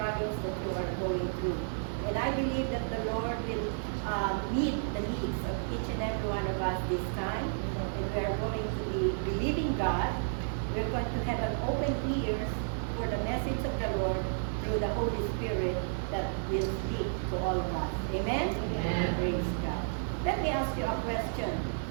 that you are going through. And I believe that the Lord will meet the needs of each and every one of us this time. And we are going to be believing God. We're going to have an open ears for the message of the Lord through the Holy Spirit that will speak to all of us. Amen? Amen. Praise God. Let me ask you a question.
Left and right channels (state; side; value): silent; left; digital silence